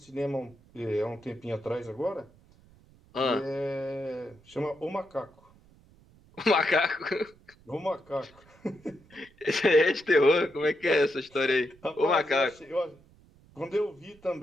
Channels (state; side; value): noise; right; rumble, 27 dB below the sound